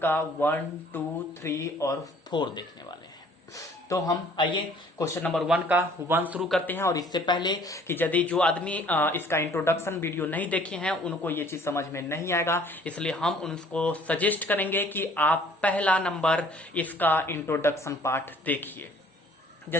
का 1, 2, 3 और 4 देखने वाले हैं। तो हम आइए क्वेश्चन नंबर 1 का 1 शुरू करते हैं। और इससे पहले कि यदि जो आदमी इसका इंट्रोडक्शन वीडियो नहीं देखे हैं उनको ये चीज समझ में नहीं आएगा, इसलिए हम उनको सजेस्ट करेंगे कि आप पहला नंबर इसका इंट्रोडक्शन पार्ट देखिए।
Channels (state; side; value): normal; both; correlation 0.55